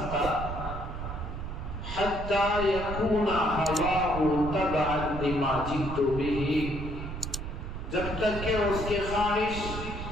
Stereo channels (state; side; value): noise; right; rumble, 7 dB below the sound